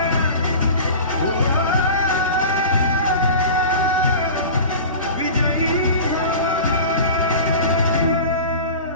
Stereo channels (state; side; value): inverted; both; correlation -0.35